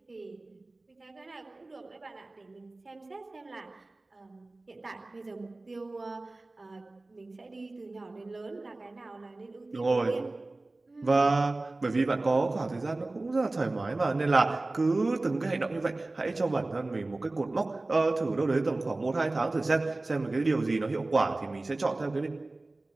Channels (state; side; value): quieter; left; 3.0 dB